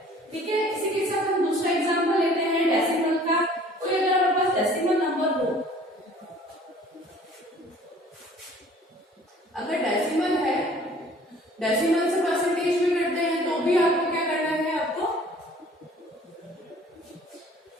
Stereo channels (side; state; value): both; normal; correlation 0.52